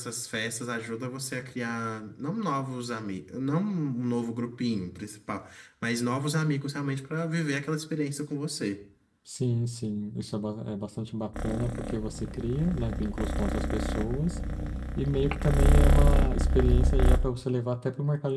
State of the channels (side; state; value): both; identical; correlation 1.00